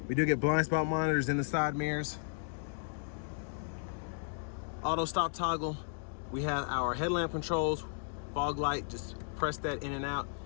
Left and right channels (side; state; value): right; silent; digital silence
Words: We do get blind spot monitors in the side mirrors. Auto stop toggle. We have our headlamp controls, fog light, just press that in and out.